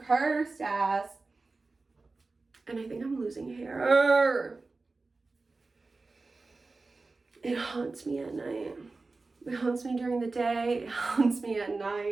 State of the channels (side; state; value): left; quieter; 3.7 dB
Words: ass. And I think I'm losing hair. It haunts me at night. It haunts me during the day. It haunts me at